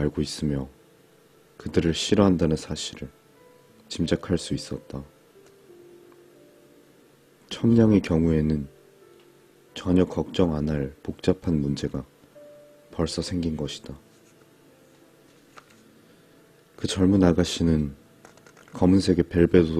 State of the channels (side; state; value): both; identical; correlation 1.00